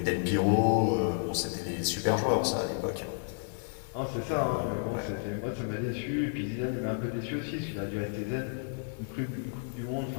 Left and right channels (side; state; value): right; silent; digital silence